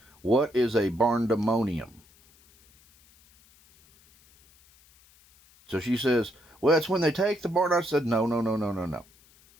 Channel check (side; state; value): left; noise; hiss, 29 dB below the sound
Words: what is a barndamonium? So she says, well, it's when they take the barn. I said, no.